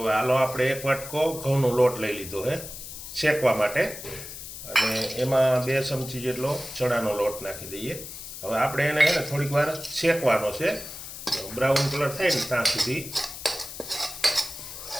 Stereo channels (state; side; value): noise; left; hiss, 11 dB below the sound